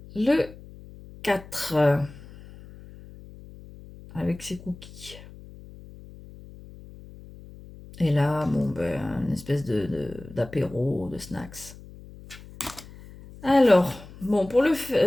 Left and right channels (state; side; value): noise; left; hum, 18 dB below the sound